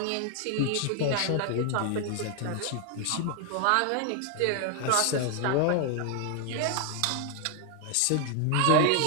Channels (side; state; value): both; different; correlation 0.00